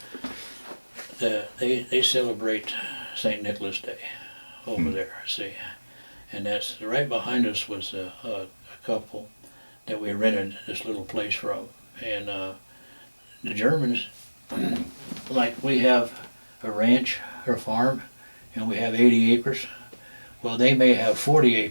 See, they celebrate St. Nicholas Day over there, see. And that's, right behind us was a couple that we rented this little place from. And the Germans, like we have a ranch or farm, and we have 80 acres. Well, they may have 40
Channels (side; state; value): both; inverted; correlation -1.00